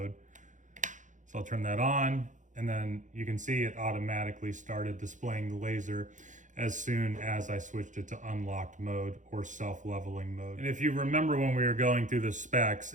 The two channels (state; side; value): late; left; 0.36 ms